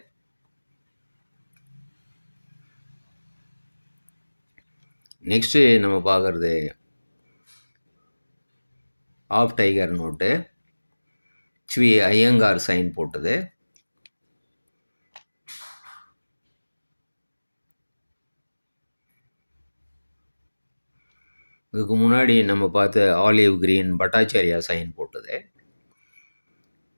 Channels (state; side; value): inverted; both; correlation -1.00